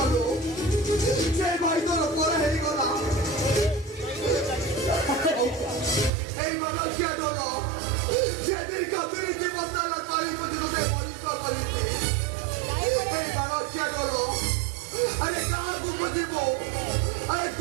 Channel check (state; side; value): drops out; left; at 6.1 s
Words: ସେ ଭାଇ ତୋର ପର ହେଇଗଲା এই মানুষিয়া ঢোল যেদিন কতরি জীবন তারা তাই পর্যন্ত পরিষ্কার করেছে এই মানুষিয়া ঢোল আরে কাহাକୁ বুঝিব আরে